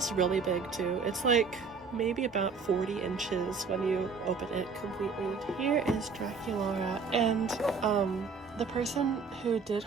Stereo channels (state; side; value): quieter; left; 5.1 dB